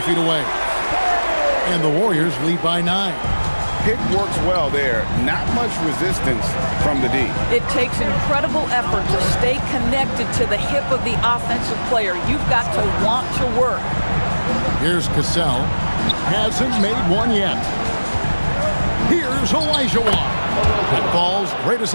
feet away. And the Warriors lead by 9. Pick works well there. Not much resistance from the D. It takes incredible effort to stay connected to the hip of the offensive player. You've got to want to work. Here's Cassell. Hasn't made one yet. Here's Olajuwon. That falls. Great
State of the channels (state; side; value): inverted; both; correlation -1.00